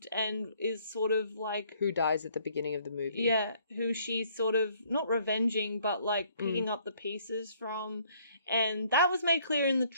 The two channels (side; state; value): both; inverted; correlation -0.63